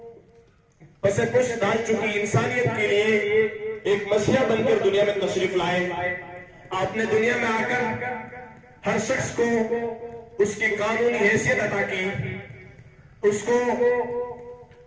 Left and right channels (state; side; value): identical; both; correlation 1.00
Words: پس پش ڈال چکی انسانیت کے لیے ایک مسیح بن کر دنیا میں تشریف لائے۔ آپ نے دنیا میں آ کر ہر شخص کو اس کی قانونی حیثیت عطا کی، اس کو